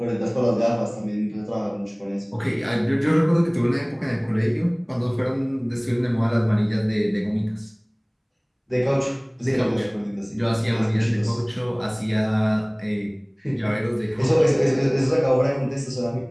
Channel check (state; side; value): identical; both; correlation 1.00